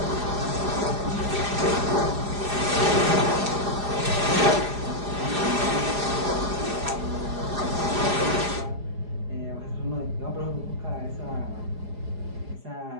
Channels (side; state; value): left; late; 4.9 ms